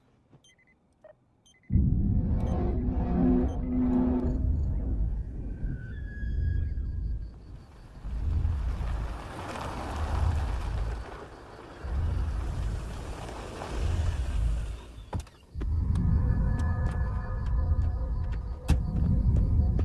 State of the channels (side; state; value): both; identical; correlation 1.00